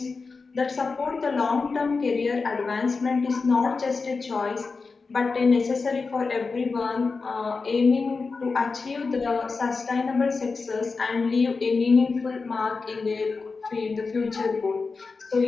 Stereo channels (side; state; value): right; quieter; 4.4 dB